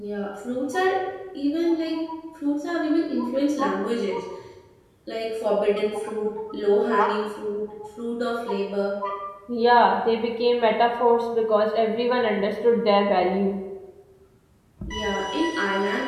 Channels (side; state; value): both; identical; correlation 1.00